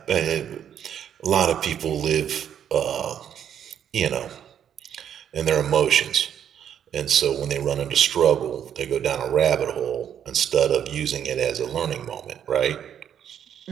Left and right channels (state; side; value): quieter; left; 9.2 dB